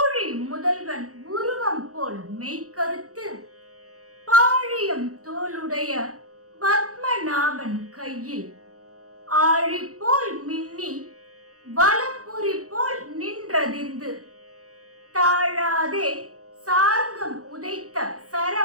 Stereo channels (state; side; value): late; left; 0.66 ms